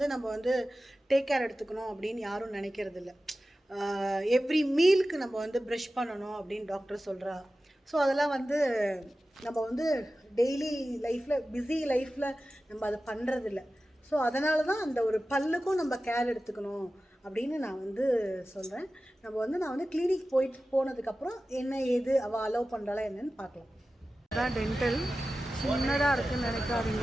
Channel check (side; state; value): both; normal; correlation 0.95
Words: நம்ம வந்து டேக் கேர் எடுத்துக்கணும் அப்படின்னு யாரும் நினைக்கிறது இல்லை. எவ்ரி மீலுக்கு நம்ம வந்து ப்ரஷ் பண்ணணும் அப்படின்னு டாக்டர் சொல்கிறா. ஸோ அதெல்லாம் வந்து நம்ம வந்து டெய்லி லைஃப்பில், பிஸி லைஃப்பில் நம்ம அதை பண்ணுறதில்ல. ஸோ அதனால தான் அந்த ஒரு பல்லுக்கும் நம்ம கேர் எடுத்துக்கணும் அப்படின்னு நான் வந்து சொல்கிறேன். நான் வந்து கிளினிக் போனதுக்கப்புறம் என்ன ஏது அவள் அலோவ் பண்ணுறாளா என்னன்னு பார்க்கலாம். அதான் டென்டல் சின்னதாக இருக்குதுன்னு நினைக்காதீங்க.